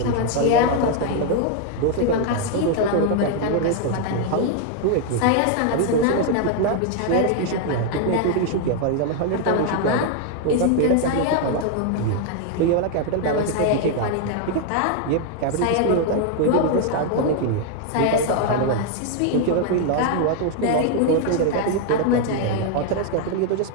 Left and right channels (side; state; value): both; different; correlation 0.00